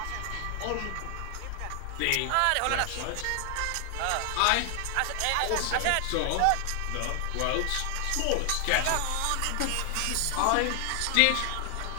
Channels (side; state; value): both; different; correlation 0.00